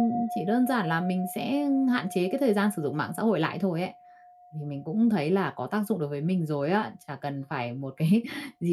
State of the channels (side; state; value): both; identical; correlation 1.00